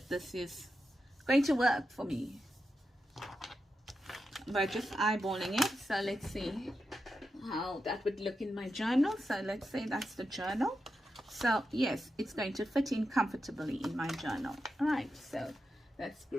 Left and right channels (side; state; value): both; normal; correlation 0.88